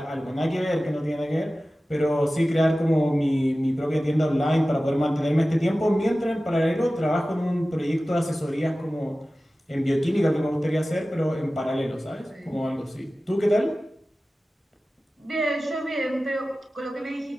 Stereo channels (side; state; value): both; normal; correlation 0.96